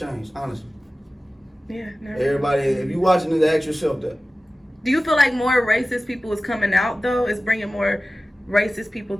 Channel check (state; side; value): normal; both; correlation 0.96